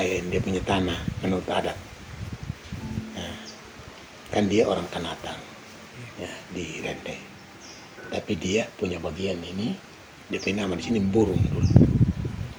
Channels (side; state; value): both; identical; correlation 1.00